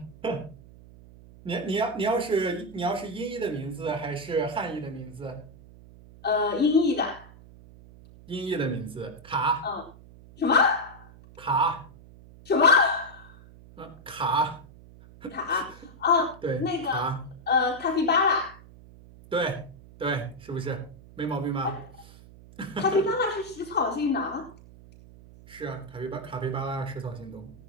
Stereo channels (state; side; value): noise; right; hum, 20 dB below the sound